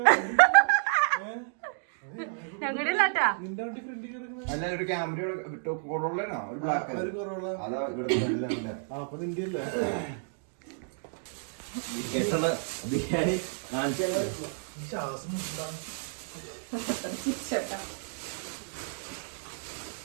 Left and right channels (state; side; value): silent; left; digital silence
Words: ഞങ്ങളുടെ ഇല്ലാട്ടാ. നിന്റെ വണ്ടി ഫ്രണ്ടിൽ കിടക്കുന്ന അല്ല ഒരു ക്യാമറ കൊറോളാണോ ഒരു ബ്ലാക്ക് അതാ ഇവിടെ അപ്പൊ നിന്റെ അല്ലേ ബിരിയാണി കാണിച്ചു ശ്വാസം